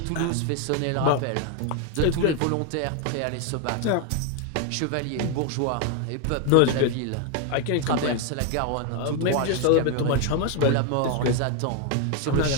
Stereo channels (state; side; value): different; both; correlation 0.01